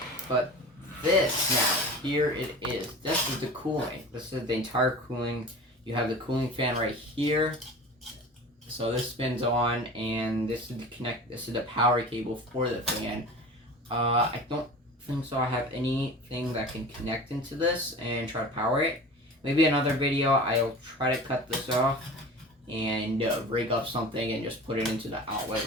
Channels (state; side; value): normal; both; correlation 0.37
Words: But this now, here it is. This is the cooling. This is the entire cooling. You have the cooling fan right here. So this spins on, and this is the power cable for the fan. I don't think so I have anything that can connect into this and try to power it. Maybe another video I'll try to cut this off and rig up something and just put it into the